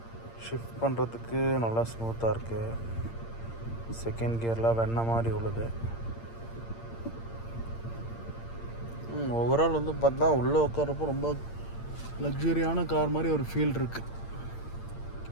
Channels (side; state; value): right; late; 8.7 ms